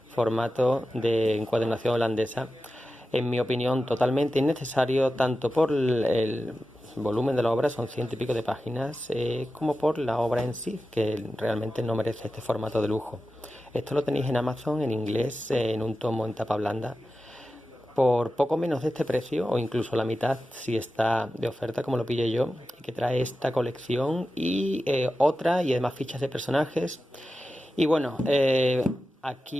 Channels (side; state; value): both; normal; correlation 0.93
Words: formato de encuadernación holandesa. En mi opinión, totalmente innecesario, tanto por el volumen de la obra, son 100 y pico de páginas, como por la obra en sí, que realmente no merece este formato de lujo. Esto lo tenéis en Amazon en inglés, en un tomo en tapa blanda, por poco menos de este precio, o incluso la mitad si está de oferta, como lo pillé yo, y que trae esta colección y otra, y además fichas de personajes. Y bueno,